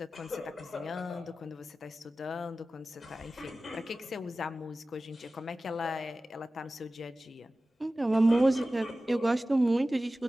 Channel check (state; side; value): normal; both; correlation 0.96